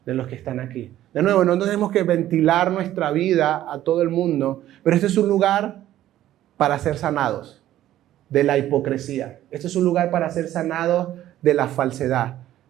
de los que están aquí. De nuevo, no tenemos que ventilar nuestra vida a todo el mundo, pero este es un lugar para ser sanados de la hipocresía. Este es un lugar para ser sanados de la falsedad.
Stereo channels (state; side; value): quieter; left; 13.2 dB